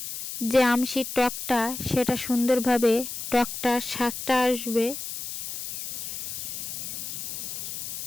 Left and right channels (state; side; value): noise; left; hiss, 7 dB below the sound